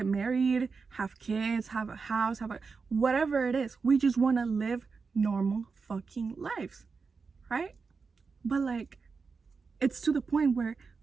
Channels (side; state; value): left; quieter; 4.9 dB